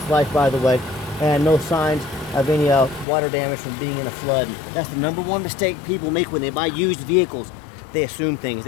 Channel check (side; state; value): right; drops out; at 3.1 s